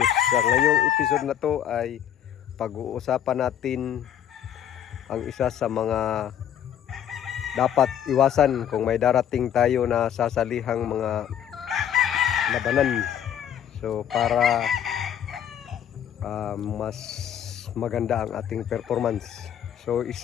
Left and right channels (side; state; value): right; quieter; 9.7 dB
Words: Sa ngayong episode na to ay pag-uusapan natin ang isa sa mga dapat iwasan kung may darating tayo na sasalihang mga labanan. So para mas maganda ang ating performance. So